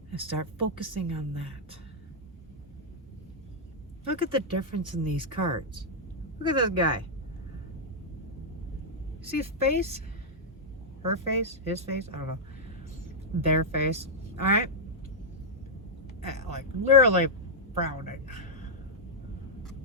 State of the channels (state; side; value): normal; both; correlation -0.06